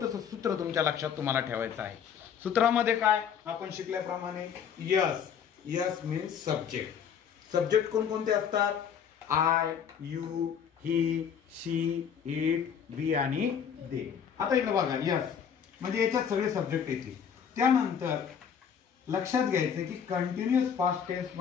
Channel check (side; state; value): right; quieter; 7.7 dB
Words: सूत्र तुमच्या लक्षात तुम्हाला ठेवायचं आहे। सूत्रामध्ये काय आपण शिकल्याप्रमाणे yes, yes means subject. Subject कोणकोणते असतात? I, you, he, she, it, we आणि दे। आता इकडे बघा, यस म्हणजे याच्यात सगळे सब्जेक्ट येतील। त्यानंतर लक्षात घ्यायचं की कंटिन्युअस पास्ट टेन्स